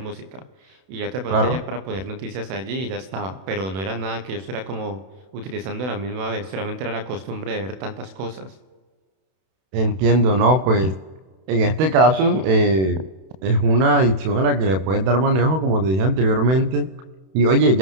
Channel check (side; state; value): left; late; 32 ms